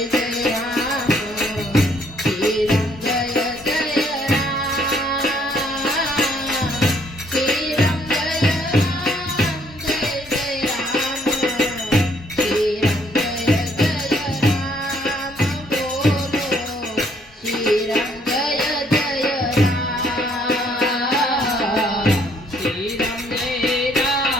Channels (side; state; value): both; normal; correlation 0.66